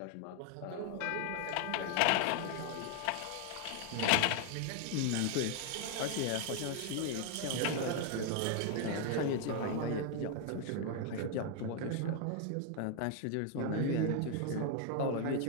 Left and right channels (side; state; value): both; different; correlation 0.00